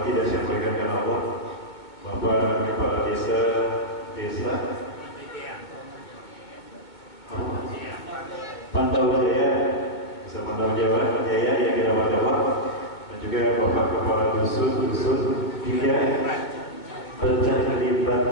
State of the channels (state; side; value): late; right; 2.2 ms